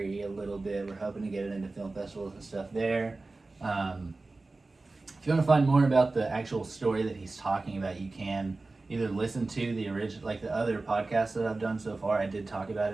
a little bit. We're hoping to get it into film festivals and stuff there. If you want to find more about the actual story that he's talking about, you can either listen to the original, like the other podcasts that I've done so far. I did talk about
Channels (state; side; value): quieter; left; 3.4 dB